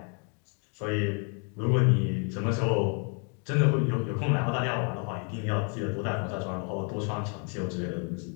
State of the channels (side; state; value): right; quieter; 39.0 dB